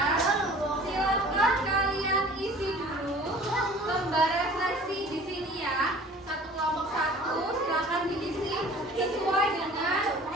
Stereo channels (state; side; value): normal; both; correlation 0.47